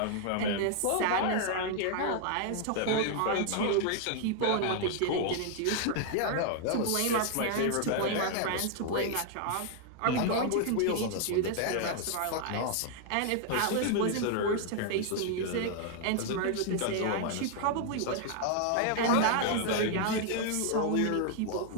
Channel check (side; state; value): both; different; correlation 0.00